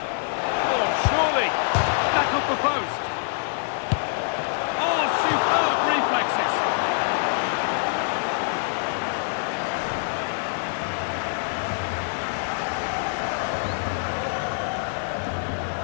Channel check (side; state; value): right; silent; digital silence